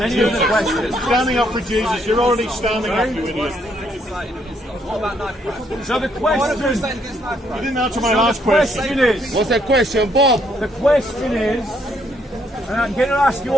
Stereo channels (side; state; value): both; normal; correlation 0.71